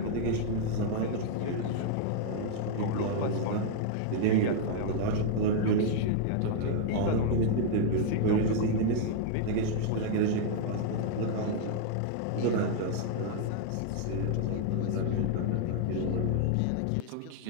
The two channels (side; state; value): both; different; correlation 0.00